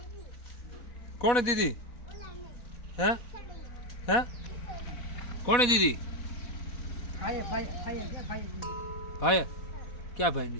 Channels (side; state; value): right; late; 4.1 ms